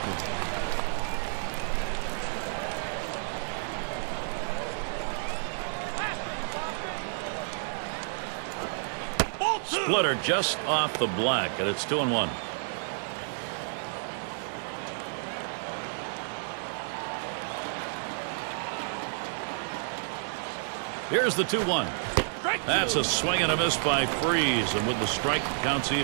Splitter just off the black, and it's 2-1. Here's the 2-1. That's a swing and a miss by Freese, and with the strike, counts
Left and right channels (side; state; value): left; silent; digital silence